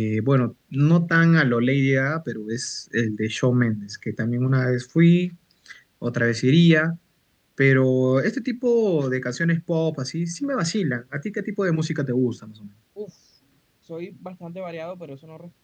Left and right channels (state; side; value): identical; both; correlation 1.00